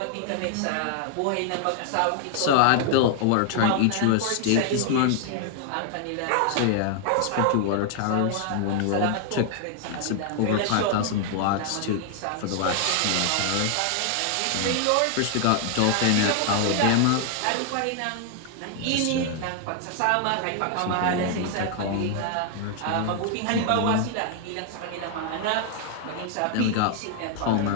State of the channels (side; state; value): both; different; correlation 0.00